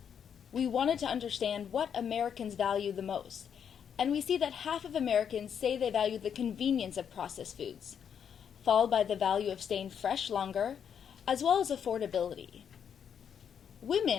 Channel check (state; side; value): quieter; right; 7.9 dB